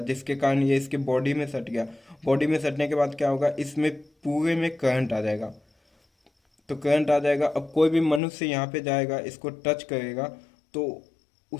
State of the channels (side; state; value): right; drops out; at 8.2 s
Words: जिसके कारण ये इसके बॉडी में सट गया। बॉडी में सटने के बाद क्या होगा, इसमें पूरे में करंट आ जाएगा। तो करंट आ जाएगा, अब कोई भी मनुष्य यहाँ पे जाएगा, इसको टच करेगा, तो